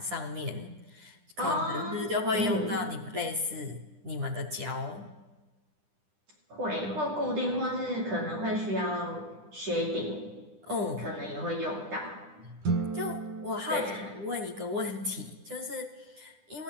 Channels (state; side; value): late; left; 9.9 ms